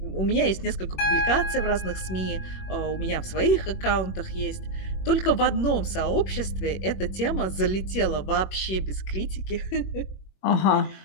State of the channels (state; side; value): late; right; 21 ms